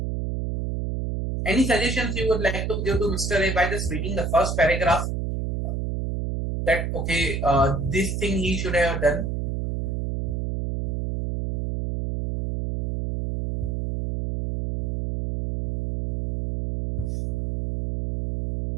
Any suggestions you would like to give to Mr. A by just reading the first paragraph? That okay, this thing he should have done.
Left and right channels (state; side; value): noise; right; hum, 2 dB below the sound